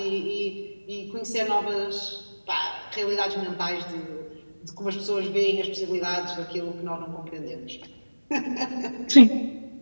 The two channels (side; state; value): both; inverted; correlation -1.00